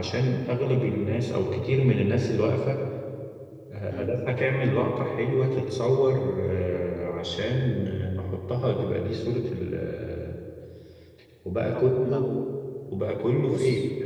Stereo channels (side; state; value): both; identical; correlation 1.00